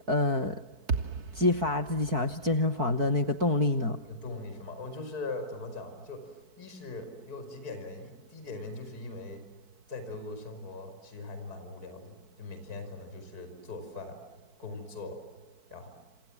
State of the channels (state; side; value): late; left; 4.6 ms